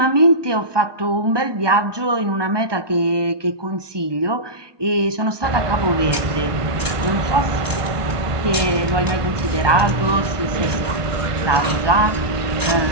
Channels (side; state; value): left; late; 1.2 ms